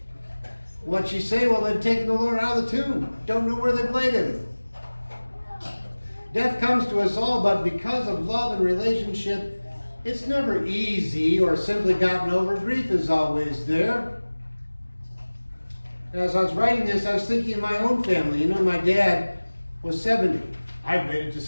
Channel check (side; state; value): both; inverted; correlation -1.00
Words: What'd she say? Well, they've taken the Lord out of the tomb. Don't know where they've laid him. Death comes to us all, but because of love and relationship, it's never easy or simply gotten over. Grief is always there. As I was writing this, I was thinking of my own family. You know, my dad was 70. I've made it to